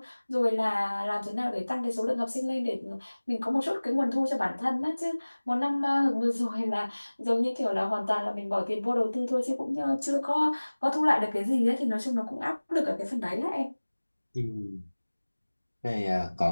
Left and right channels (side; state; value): both; inverted; correlation -1.00